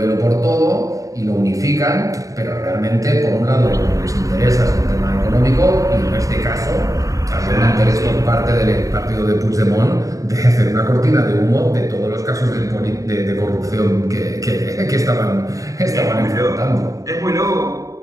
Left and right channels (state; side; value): late; left; 0.16 ms